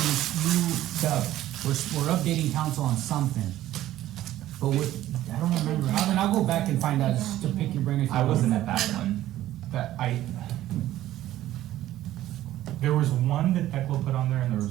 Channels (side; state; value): left; quieter; 13.9 dB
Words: we're updating council on something. But I don't remember, I'll go back and find out, just to pick your brain if you I want. wasn't at that one. There was one that Thecla put on there, and there